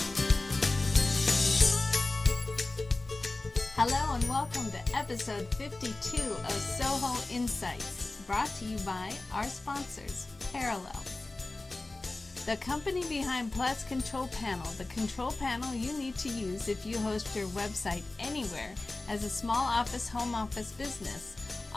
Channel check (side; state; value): right; quieter; 3.1 dB